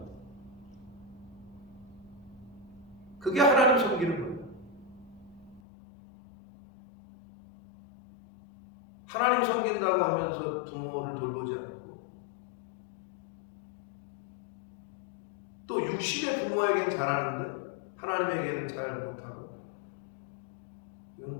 그게 하나님 섬기는 거예요. 하나님 섬긴다고 하면서 부모를 돌보지 않고 또 육신의 부모에겐 잘하는데 하나님에게는 잘 못하고 이건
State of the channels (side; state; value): right; drops out; at 5.6 s